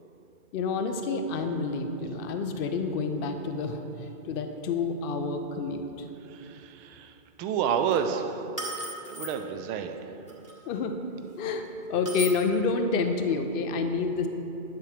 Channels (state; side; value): late; right; 2.4 ms